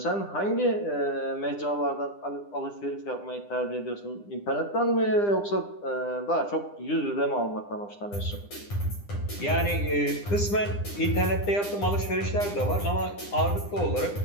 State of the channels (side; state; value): right; late; 9.9 ms